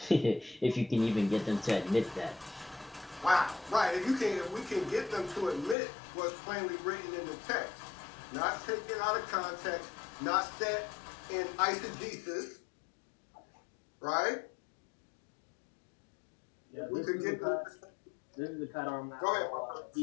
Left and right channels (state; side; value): drops out; right; at 5.8 s